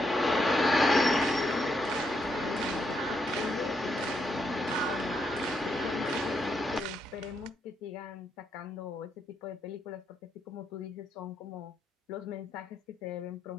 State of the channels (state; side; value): normal; both; correlation 0.79